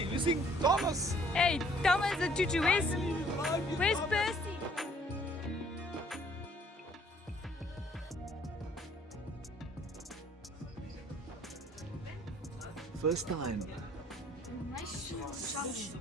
Thomas. Hey, Thomas the tutu, where's Percy? First time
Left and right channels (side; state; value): both; normal; correlation 0.60